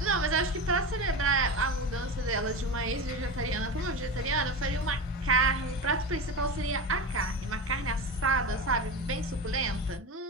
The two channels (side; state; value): both; normal; correlation 0.24